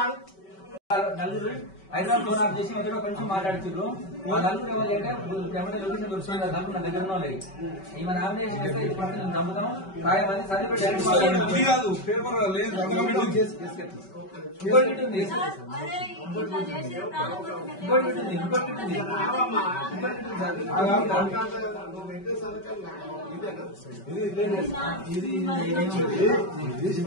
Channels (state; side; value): late; right; 5.2 ms